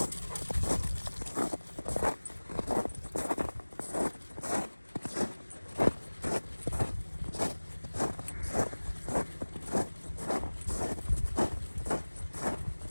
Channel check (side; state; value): both; inverted; correlation -1.00